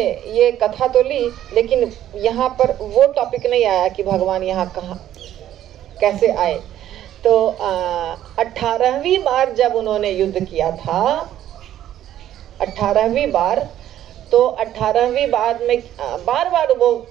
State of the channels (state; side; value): quieter; left; 11.9 dB